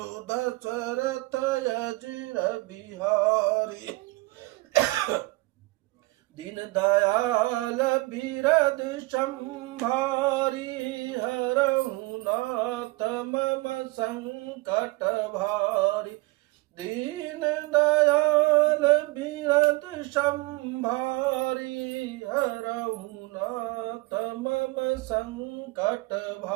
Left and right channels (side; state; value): left; quieter; 23.0 dB